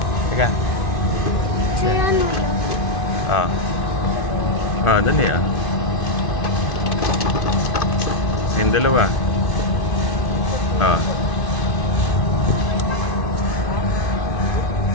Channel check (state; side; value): late; right; 2.5 ms